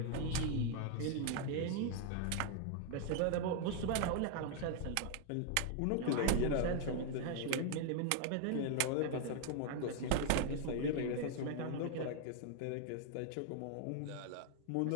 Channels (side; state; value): both; different; correlation 0.00